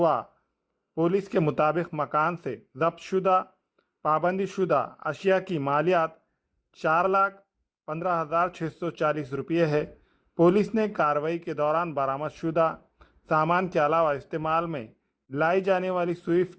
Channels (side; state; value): both; identical; correlation 1.00